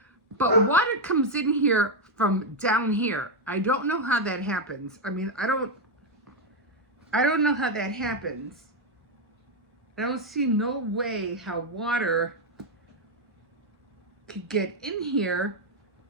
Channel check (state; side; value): normal; both; correlation 0.02